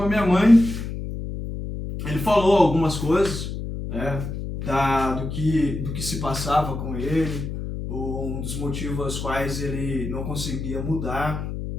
a minha mãe, ele falou algumas coisas, né, do que se passava com ele, um dos motivos aos quais ele não conseguia mudar.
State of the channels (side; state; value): left; noise; hum, 6 dB below the sound